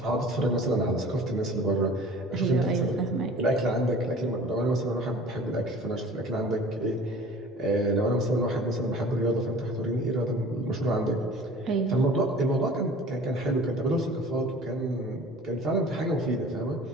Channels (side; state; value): both; normal; correlation 0.45